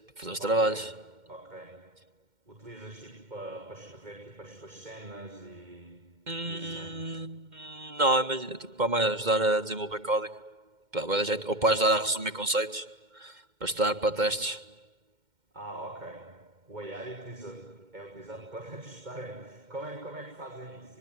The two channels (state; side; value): late; left; 2.1 ms